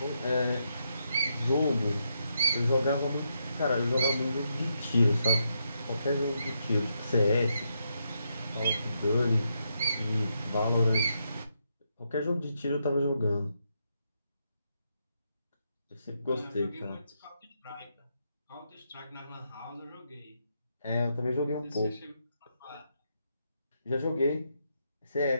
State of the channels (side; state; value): both; inverted; correlation -0.80